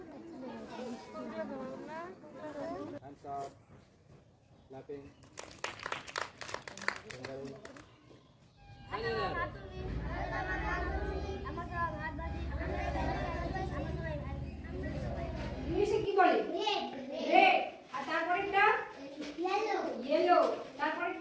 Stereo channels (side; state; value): both; identical; correlation 1.00